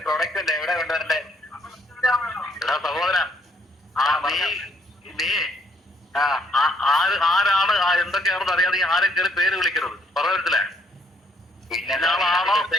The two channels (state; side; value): normal; both; correlation 0.68